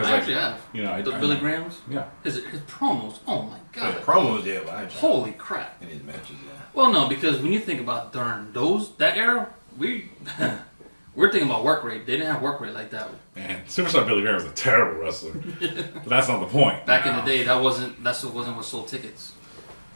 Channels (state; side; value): inverted; both; correlation -1.00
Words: I actually have. The Billy Grahams. Yeah. His promos. Oh my god. Promos, yeah. But holy crap. In his matches, yeah. Well, no, because when you think about during that era, we're thinking about work rate. They didn't have work rate like that. Man, Superstar Billy Graham was a terrible wrestler. But that's not the point. Back in the day, that wasn't what sold tickets.